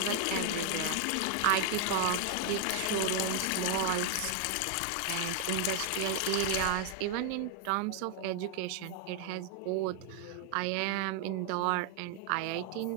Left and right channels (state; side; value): different; both; correlation 0.00